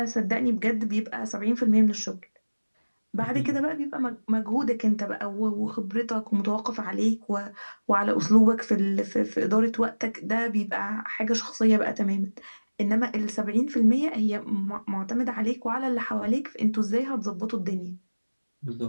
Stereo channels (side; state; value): both; inverted; correlation -1.00